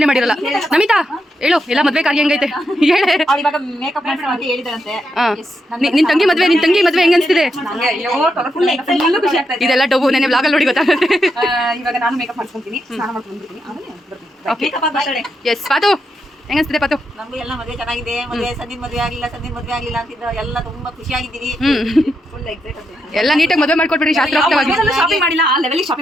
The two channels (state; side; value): normal; both; correlation 0.83